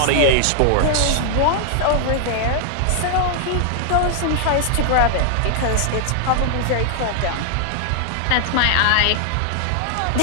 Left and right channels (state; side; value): different; both; correlation 0.00